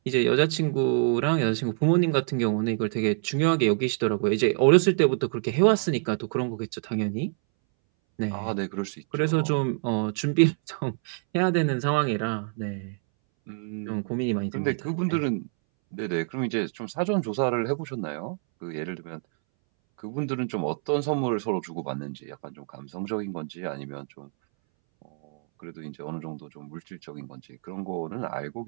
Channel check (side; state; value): left; silent; 60 dB below the other